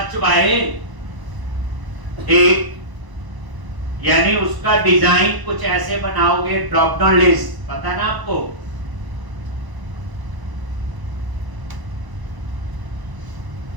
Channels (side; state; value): left; late; 1.0 ms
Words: बाय एक, यानी उसका डिजाइन कुछ ऐसे बनाओगे, ड्रॉप डाउन लिस्ट, पता ना आपको।